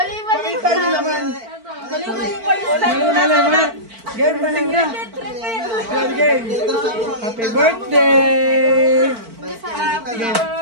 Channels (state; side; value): late; left; 4.5 ms